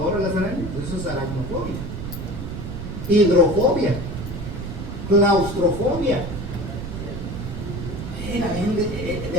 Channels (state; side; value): noise; right; rumble, 7 dB below the sound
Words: a las arañas? Eso es aracnofobia. Hidrofobia. Claustrofobia.